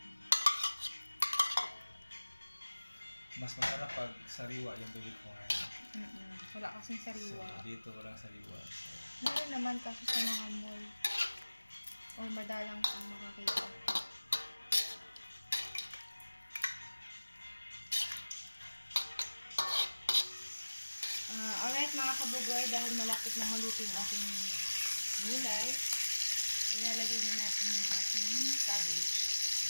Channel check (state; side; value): inverted; both; correlation -1.00